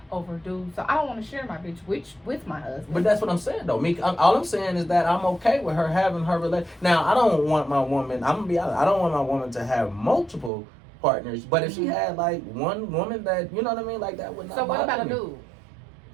over dudes. So I don't want to share my bitch with my husband. But that's what I'm saying though. All I'm saying is that I'm okay with her having her relation. Now I don't want my woman. I'm gonna be honest. I don't want my woman to have multiple partners. But if she had like one woman that you know what I mean, like that would not. So what about a bother me. dude?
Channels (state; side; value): drops out; left; at 10.5 s